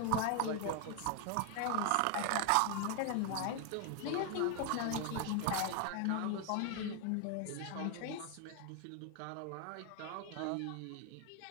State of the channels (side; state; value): both; different; correlation 0.01